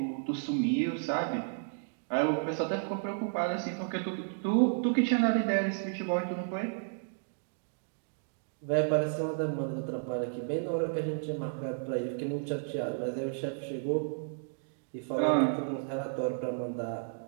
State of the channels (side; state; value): left; silent; digital silence